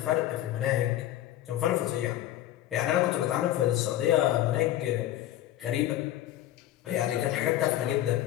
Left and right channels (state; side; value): quieter; right; 13.5 dB